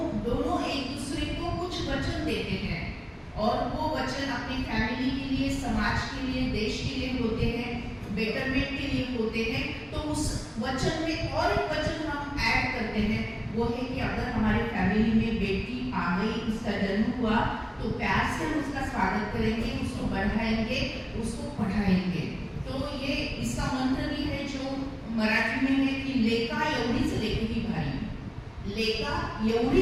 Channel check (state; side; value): identical; both; correlation 1.00